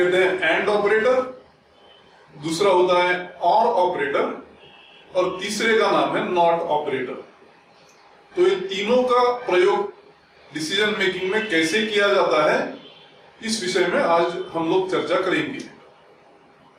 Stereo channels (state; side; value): identical; both; correlation 1.00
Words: हैं एंड ऑपरेटर, दूसरा होता है और ऑपरेटर और तीसरे का नाम है नॉट ऑपरेटर। तो ये तीनों का प्रयोग डिसीजन मेकिंग में कैसे किया जाता है, इस विषय में आज हम लोग चर्चा करेंगे।